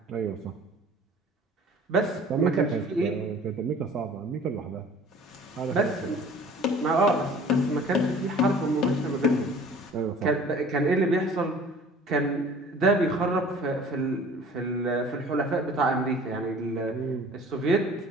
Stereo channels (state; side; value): normal; both; correlation 0.48